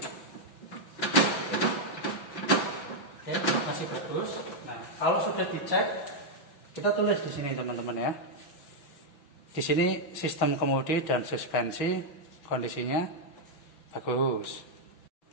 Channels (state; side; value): late; right; 5.9 ms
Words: Oke, masih bagus. Nah, kalau sudah dicek, kita tulis di sini teman-teman ya. Di sini sistem kemudi dan suspensi kondisinya bagus.